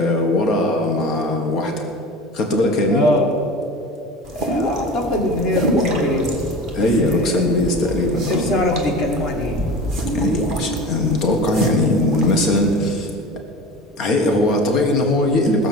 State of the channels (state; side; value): normal; both; correlation 0.35